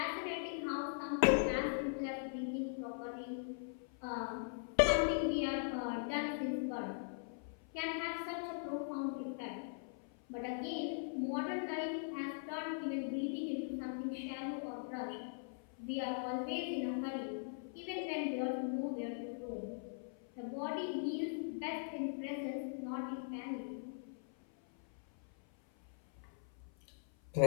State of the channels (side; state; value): right; silent; 51 dB below the other